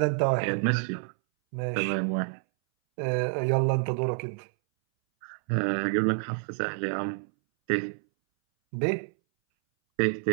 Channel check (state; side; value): silent; left; 59 dB below the other